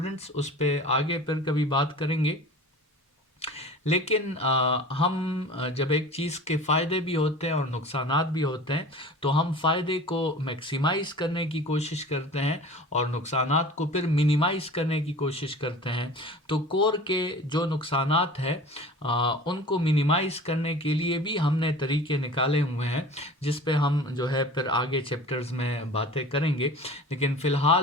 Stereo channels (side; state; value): both; normal; correlation 0.39